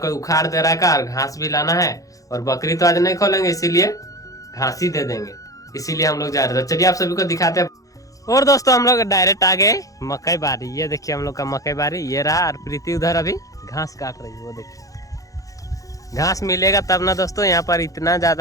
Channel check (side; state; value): right; late; 0.17 ms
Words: उखाड़ दे रहा है और घास भी लाना है, और बकरी तो आज नहीं खोलेंगे इसीलिए घास ही दे देंगे, इसीलिए हम लोग जा रहे थे। चलिए आप सभी को दिखाते हैं। और दोस्तों हम लोग डायरेक्ट आ गए मकई बारी। ये देखिए हम लोग का मकई बारी ये रहा, और प्रीति उधर अभी घास काट रही है। वो देखिए घास मिलेगा तब ना दोस्तों, यहाँ पर इतना